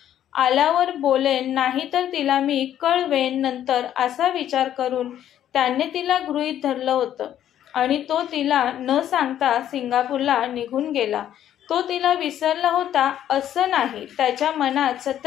आल्यावर बोलेन, नाहीतर तिला मी कळवेन नंतर असा विचार करून त्याने तिला गृहीत धरलं होतं आणि तो तिला न सांगता सिंगापूरला निघून गेला. तो तिला विसरला होता असं नाही. त्याच्या मनात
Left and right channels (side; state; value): right; quieter; 11.0 dB